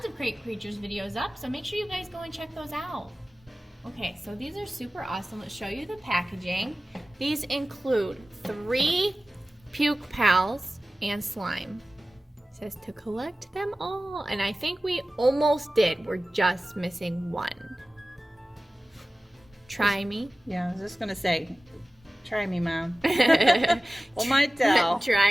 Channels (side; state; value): both; normal; correlation 0.96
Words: of Crate Creatures videos up, so make sure you guys go and check those out. Okay, so these are super awesome. Let's show you the packaging. These include 3 Puke Pals and slime. It says to collect them all, and I think we almost did. We're just missing one. Try me. Yeah, I was just gonna say, try me, Mom. Pull my tail.